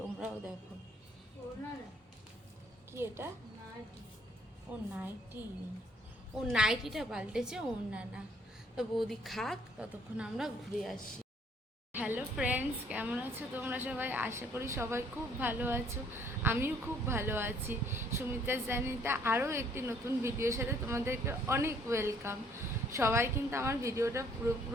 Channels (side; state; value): both; normal; correlation 0.62